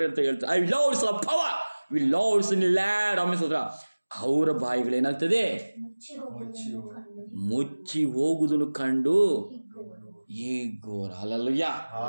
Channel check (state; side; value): inverted; both; correlation -1.00